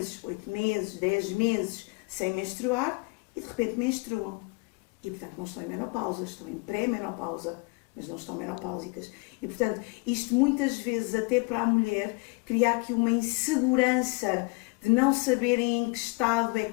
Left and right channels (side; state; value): right; quieter; 29.6 dB